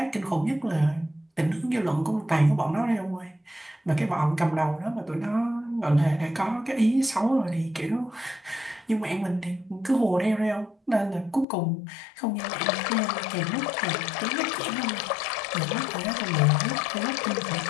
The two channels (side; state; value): right; drops out; at 11.5 s